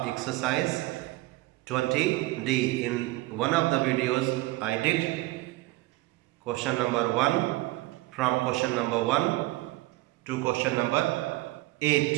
exercise 20D. In one of the videos I did question number 1 from question number 1 to question number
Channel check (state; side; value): quieter; left; 19.4 dB